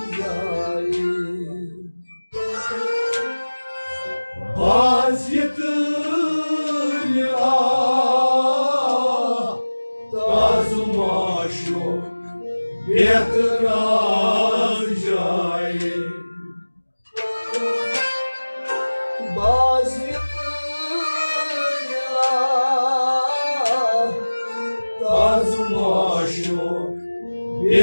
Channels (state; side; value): inverted; both; correlation -1.00